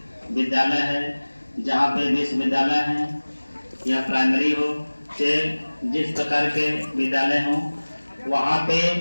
विद्यालय है, जहाँ पे विश्वविद्यालय है या प्राइमरी हो, से जिस प्रकार के विद्यालय हों, वहाँ पे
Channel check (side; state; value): both; inverted; correlation -1.00